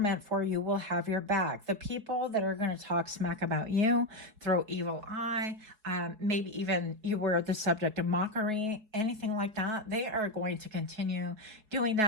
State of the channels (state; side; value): late; left; 4.7 ms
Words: for you will have your back. The people that are going to talk smack about you, throw evil eye, maybe even you were the subject of mockery, anything like that, they are going to continue doing